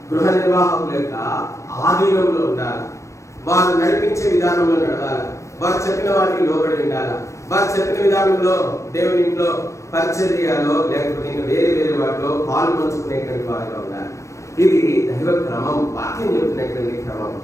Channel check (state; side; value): late; right; 0.15 ms